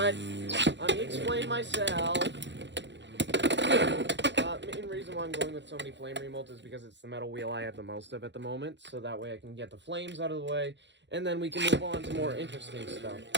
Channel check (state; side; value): late; left; 0.52 ms